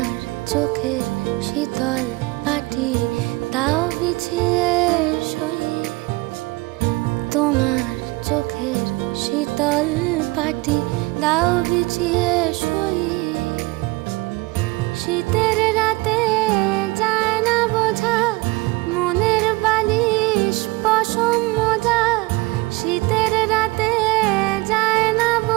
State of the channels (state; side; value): quieter; left; 23.2 dB